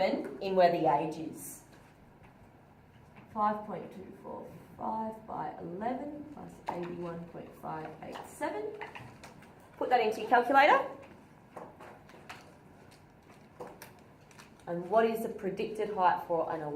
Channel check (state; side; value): identical; both; correlation 1.00